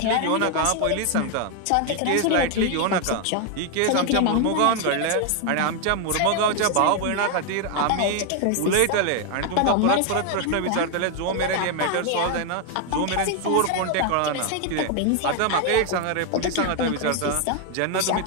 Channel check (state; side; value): different; both; correlation 0.01